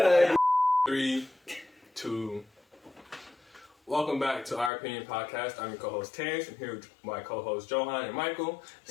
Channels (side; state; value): right; drops out; at 4.7 s